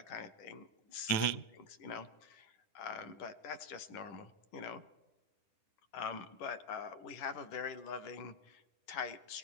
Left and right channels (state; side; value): late; right; 10 ms